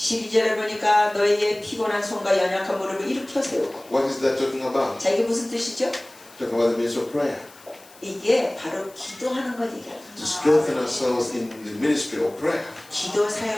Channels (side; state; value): left; noise; hiss, 24 dB below the sound